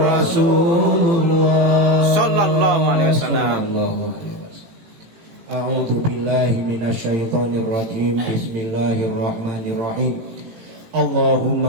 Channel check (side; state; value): left; late; 18 ms